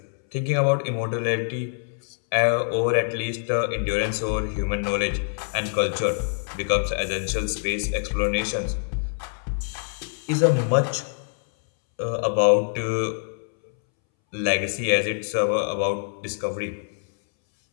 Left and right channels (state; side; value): silent; right; 62 dB below the other